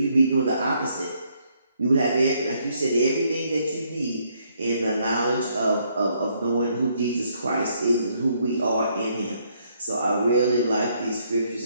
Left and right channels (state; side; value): inverted; both; correlation -0.71